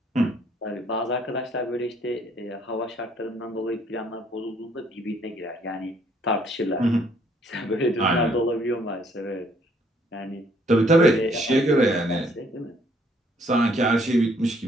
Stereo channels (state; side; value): normal; both; correlation 0.65